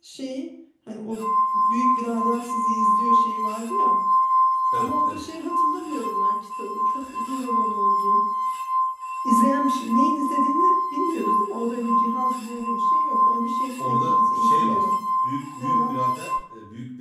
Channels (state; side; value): identical; both; correlation 1.00